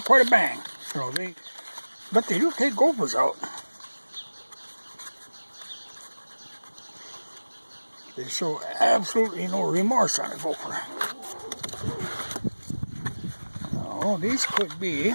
a bang. You know, but they do take gophers out. They show absolutely no remorse on a gopher. Oh, these could be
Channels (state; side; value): inverted; both; correlation -1.00